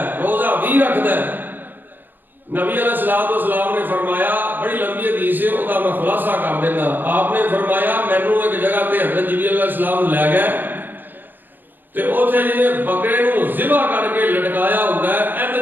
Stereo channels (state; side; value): late; left; 0.091 ms